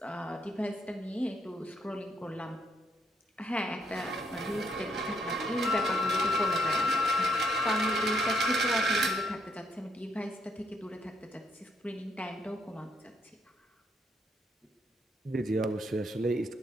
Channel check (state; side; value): normal; both; correlation 0.72